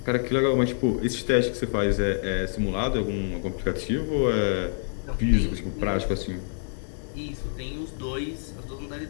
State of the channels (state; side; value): silent; right; 59 dB below the other